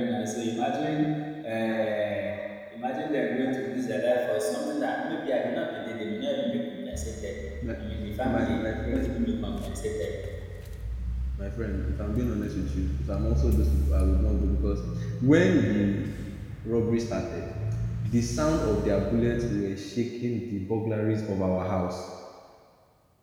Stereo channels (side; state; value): both; identical; correlation 1.00